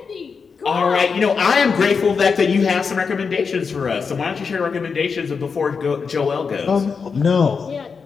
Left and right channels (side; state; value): right; quieter; 5.5 dB